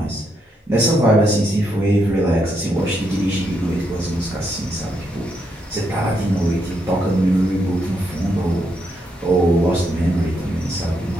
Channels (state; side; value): normal; both; correlation 0.79